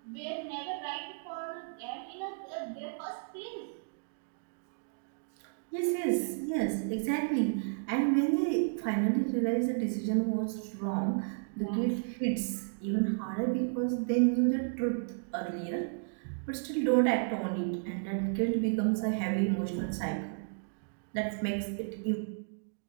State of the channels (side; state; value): left; silent; digital silence